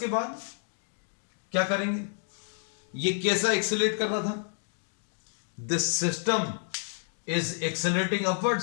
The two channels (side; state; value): right; silent; 58 dB below the other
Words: बाद क्या करेंगे? ये कैसा एक्सेलरेट कर रहा था? This system is accelerating